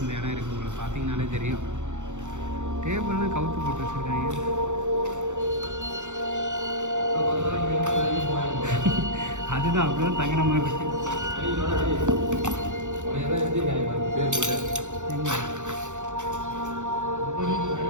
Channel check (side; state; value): left; late; 0.85 ms